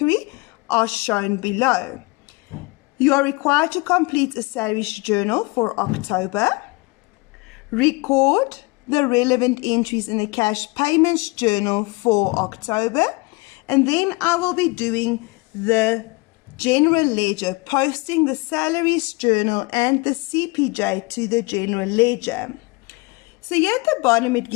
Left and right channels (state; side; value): quieter; right; 26.2 dB